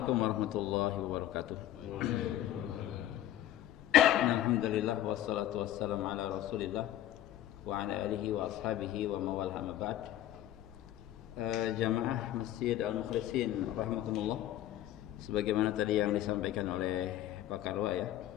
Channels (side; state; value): right; quieter; 12.8 dB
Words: warahmatullahi wabarakatuh. Alhamdulillah wassalatu wassalamu ala Rasulillah wa ala alihi wa ashabihi wa mawal amma ba'd. Jamaah Masjid Al-Mukhlisin rahmatullah. Sebagaimana tadi yang disampaikan oleh Pak Karwa ya,